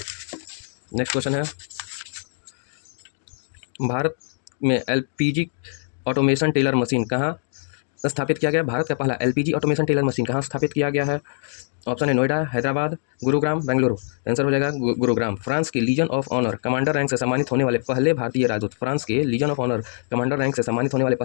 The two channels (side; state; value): right; silent; digital silence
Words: नेक्स्ट क्वेश्चन है, भारत में LPG ऑटोमेशन टेलर मशीन कहाँ स्थापित किया गया? भारत का पहला LPG ऑटोमेशन टेलर मशीन कहाँ स्थापित किया गया है? ऑप्शन है नोएडा, हैदराबाद, गुरुग्राम, बेंगलुरु। आंसर हो जाएगा गुरुग्राम। फ्रांस के legion of honour commander rank से सम्मानित होने वाले पहले भारतीय राजदूत। फ्रांस के legion of honour commander rank से सम्मानित होने वाले